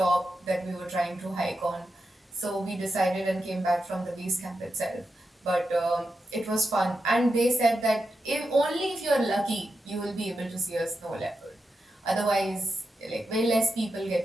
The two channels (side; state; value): both; normal; correlation 0.88